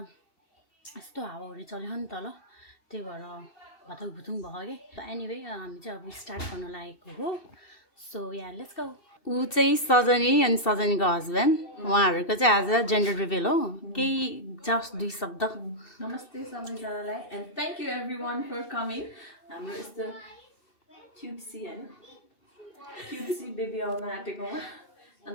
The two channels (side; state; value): right; late; 2.7 ms